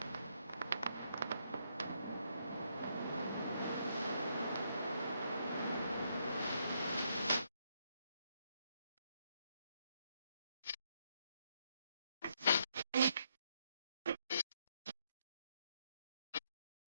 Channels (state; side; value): inverted; both; correlation -0.75